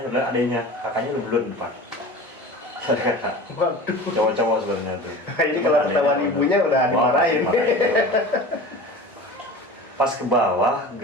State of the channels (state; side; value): normal; both; correlation 0.36